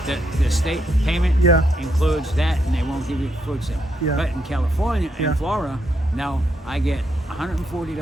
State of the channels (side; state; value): both; normal; correlation 0.78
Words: the state payment Yeah. includes that, and they won't give you food stamp. Yeah. But in California Yeah. and Florida, now I get